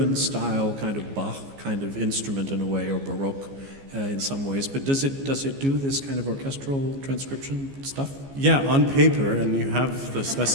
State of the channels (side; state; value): left; late; 15 ms